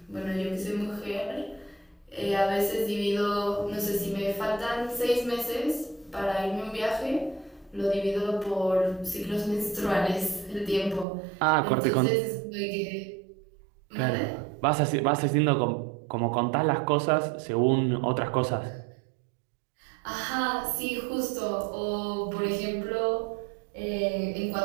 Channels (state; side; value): drops out; left; at 11.1 s